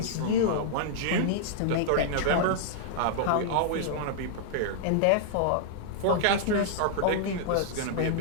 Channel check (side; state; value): both; different; correlation -0.01